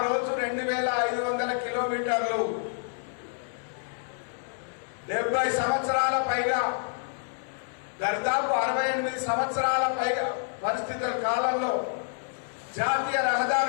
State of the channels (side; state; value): right; silent; 59 dB below the other